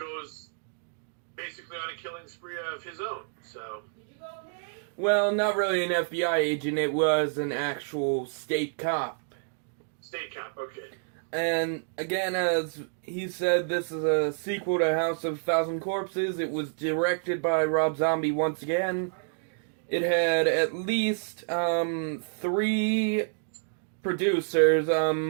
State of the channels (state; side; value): silent; left; digital silence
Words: basically on a killing spree of his own. So, well, not really an FBI agent. It was an actual state cop. State cop, okay. And again, as he said, this is a sequel to House of a Thousand Corpses. It was directed by Rob Zombie once again. It had at least 3 producers,